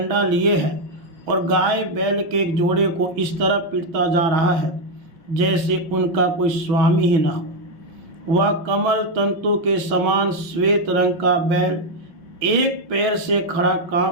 लिए है और गाय बैल के एक जोड़े को इस तरह पीटता जा रहा है जैसे उनका कोई स्वामी ही ना हो। वह कमल तंतु के समान श्वेत रंग का बैल एक पैर से खड़ा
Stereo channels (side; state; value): left; late; 5.7 ms